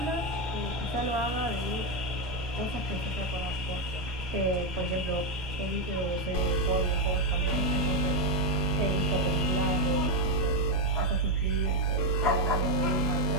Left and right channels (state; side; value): normal; both; correlation 0.05